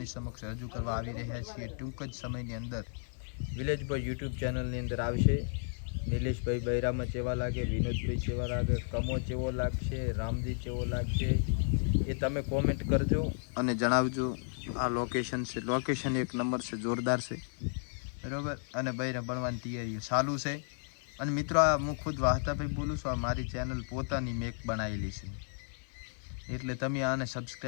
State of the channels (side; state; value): right; silent; digital silence